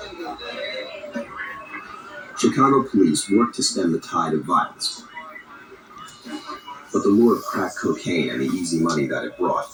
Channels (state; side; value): identical; both; correlation 1.00